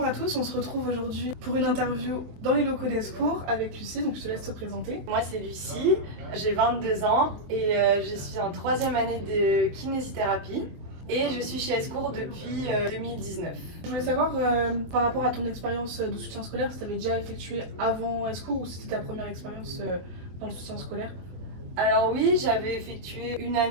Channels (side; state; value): left; late; 23 ms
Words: à tous, on se retrouve aujourd'hui pour une interview dans les locaux d'Escours avec Lucie, donc je te laisse te présenter. Moi c'est Lucie, j'ai 22 ans et je suis en 3e année de kinésithérapie et je suis chez Escours depuis 2019. Je voulais savoir par rapport à ton expérience de soutien scolaire, si tu avais déjà effectué avant Escours ou si c'était ta première expérience dans le soutien scolaire. Alors oui, j'avais effectué une